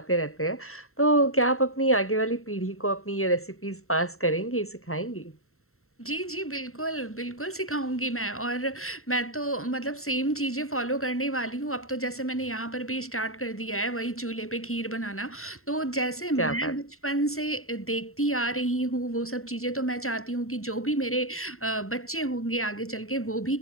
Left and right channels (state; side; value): late; right; 0.63 ms